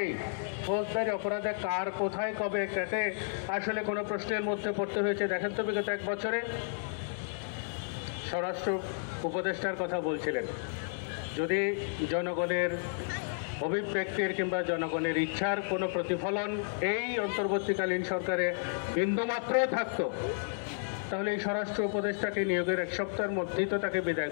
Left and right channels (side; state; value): right; silent; 56 dB below the other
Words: ফৌজদারি অপরাধে কার কোথায় কবে কাকে আসলে কোনো প্রশ্নের মধ্যে পড়তে হয়েছে দেখেন তো। বিগত এক বছরে স্বরাষ্ট্র উপদেষ্টার কথা বলছিলেন, যদি জনগণের অভিব্যক্তির কিংবা জনগণের ইচ্ছার কোনো প্রতিফলন এই অন্তর্বর্তীকালীন সরকারে বিন্দুমাত্র থাকতো, তাহলে এই স্বরাষ্ট্র উপদেষ্টাকে নিয়োগের এক সপ্তাহের মধ্যেই তো তাকে বিদায়